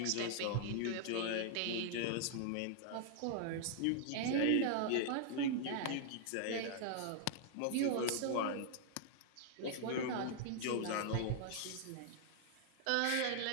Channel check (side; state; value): both; different; correlation -0.01